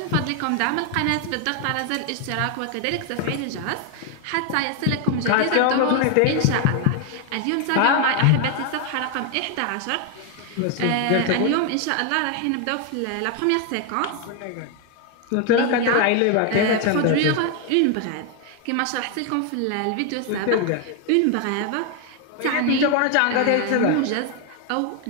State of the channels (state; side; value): different; both; correlation 0.01